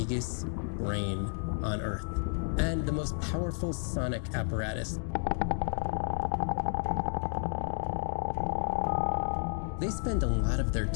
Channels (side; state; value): right; silent; 57 dB below the other